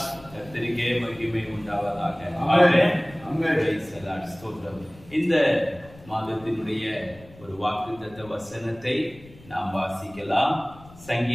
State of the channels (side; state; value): left; noise; rumble, 22 dB below the sound